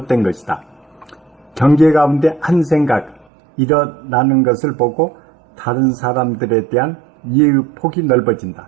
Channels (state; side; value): drops out; left; at 3.2 s